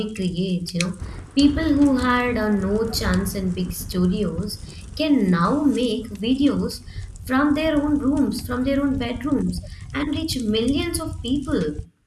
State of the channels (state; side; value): identical; both; correlation 1.00